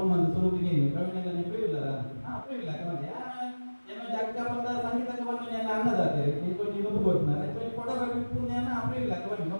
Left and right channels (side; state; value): both; inverted; correlation -1.00